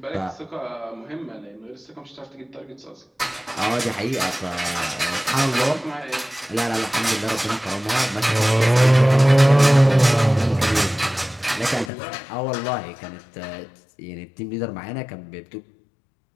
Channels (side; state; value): right; drops out; at 11.9 s